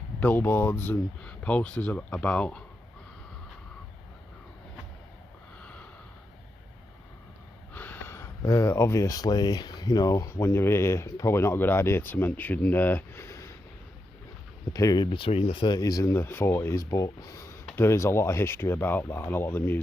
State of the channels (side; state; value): both; normal; correlation 0.86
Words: billboards and posters about. Obviously, you know, when you're here, probably not a good idea to mention the period between the 30s and the 40s, but there is a lot of history about that, and a lot of the